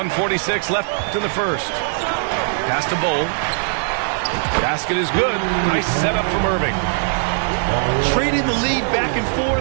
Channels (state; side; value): silent; left; 66 dB below the other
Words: left in the first. Pass to Bull. Basket is good. Nice setup from Irving. Trading the lead back and